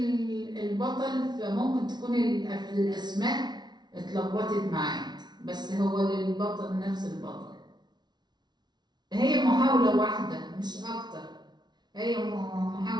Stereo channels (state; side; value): late; left; 0.20 ms